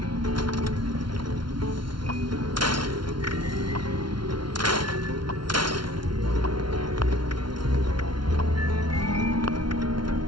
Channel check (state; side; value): late; left; 0.72 ms